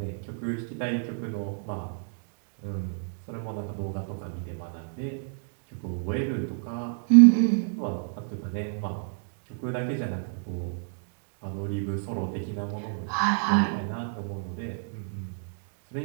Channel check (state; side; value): silent; left; digital silence